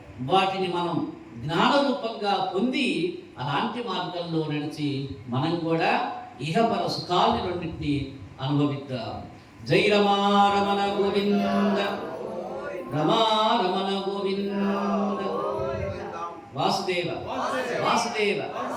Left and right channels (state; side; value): identical; both; correlation 1.00